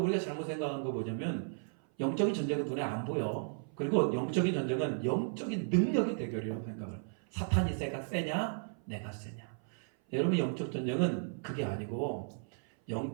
우리가 잘못 생각한 거 뭐냐면, 영적인 전쟁은 눈에 안 보여. 그리고 영적인 전쟁은 영적인 능력의 대결이라고 생각을. 사탄이 세냐? 내가 세냐? 여러분, 영적 전쟁은 그게 아니고,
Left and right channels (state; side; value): silent; left; 55 dB below the other